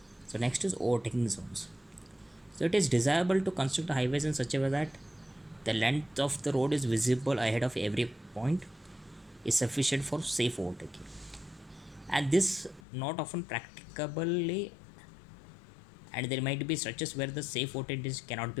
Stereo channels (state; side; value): drops out; right; at 12.8 s